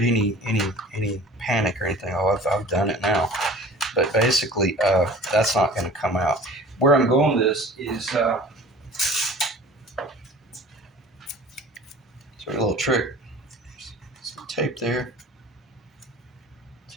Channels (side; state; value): both; normal; correlation 0.44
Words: any panic or anything. Oh, I've done it now. But basically, that's not going to come out. Where I'm going with this is it's a little trick. Some tape there.